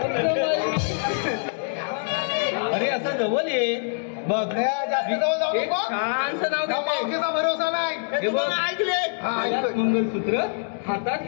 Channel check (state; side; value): silent; right; 62 dB below the other